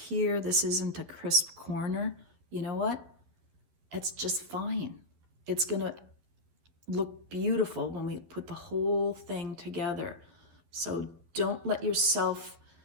This isn't a crisp corner. You know what? It's just fine. It's gonna look beautiful when we put the whole thing together. So don't let yourself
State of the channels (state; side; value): late; left; 12 ms